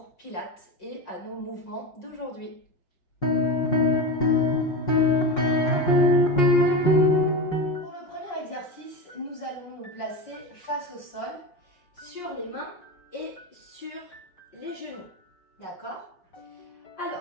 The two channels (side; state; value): right; late; 5.5 ms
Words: Pilates et à nos mouvements d'aujourd'hui. Pour le premier exercice, nous allons nous placer face au sol, sur les mains et sur les genoux. D'accord?